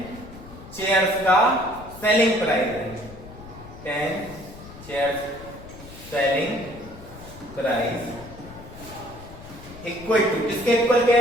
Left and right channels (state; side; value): noise; left; rumble, 17 dB below the sound